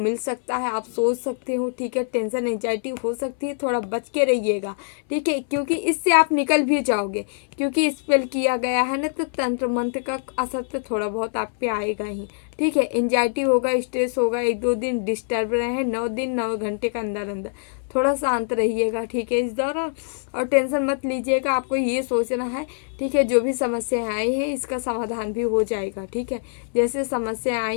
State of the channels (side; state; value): right; silent; 63 dB below the other